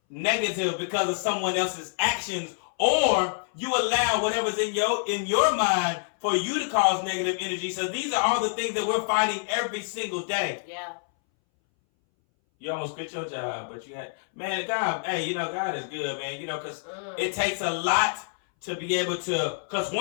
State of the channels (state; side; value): silent; right; 60 dB below the other